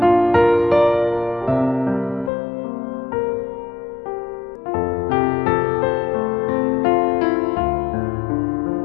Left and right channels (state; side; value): drops out; right; at 2.3 s